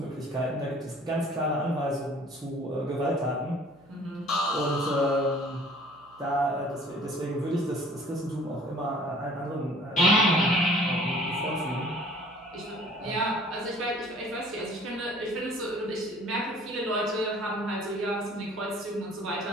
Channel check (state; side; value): noise; right; hum, 28 dB below the sound